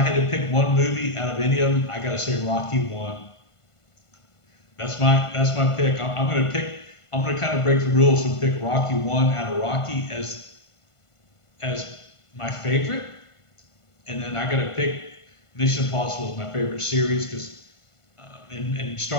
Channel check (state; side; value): late; right; 1.5 ms